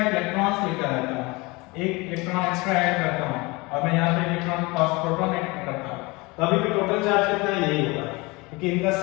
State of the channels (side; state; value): right; quieter; 24.7 dB